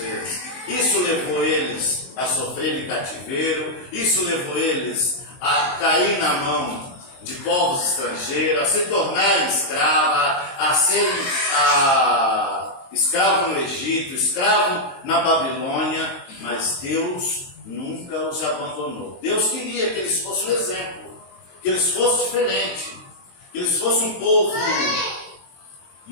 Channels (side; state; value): right; late; 22 ms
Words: Isso levou eles a sofrer em cativeiro, isso levou eles a cair na mão de povos estrangeiros, a se tornarem escravos, a serem escravos no Egito, escravos na Babilônia, mas Deus nunca os abandonou. Deus queria que eles fossem um exemplo, que eles fossem diferentes, que eles fossem um povo